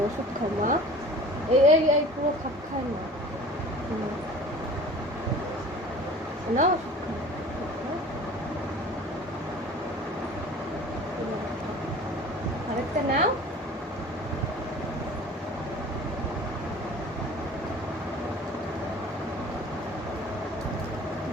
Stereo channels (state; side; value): normal; both; correlation 0.43